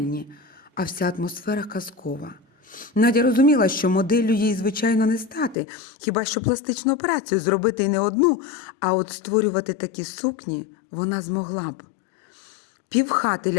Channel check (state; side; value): drops out; right; at 5.6 s